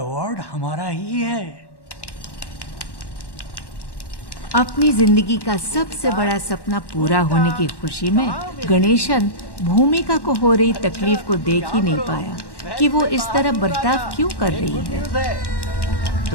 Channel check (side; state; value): right; late; 1.1 ms